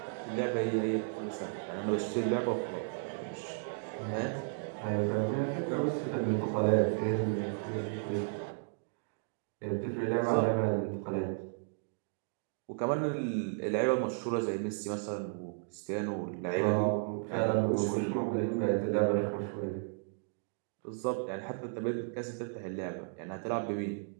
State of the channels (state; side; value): silent; left; digital silence